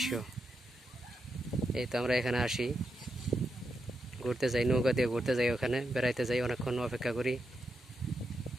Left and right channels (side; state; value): both; normal; correlation 0.85